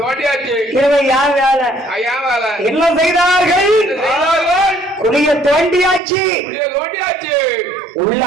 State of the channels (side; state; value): left; drops out; at 6.0 s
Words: இரவு யார் வேலை என்ன செய்தார்கள்? குளிய தோண்டியாச்சு உள்ள